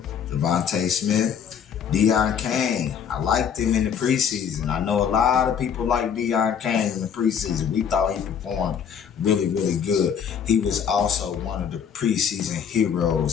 Devontae Smith, Deion Kane. I liked him in the preseason. I know a lot of people like Deion Kane in the preseason. We thought he performed really good. He was also one of the preseason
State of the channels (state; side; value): quieter; right; 7.7 dB